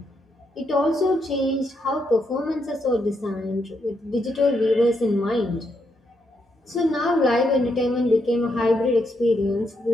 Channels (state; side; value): normal; both; correlation 0.79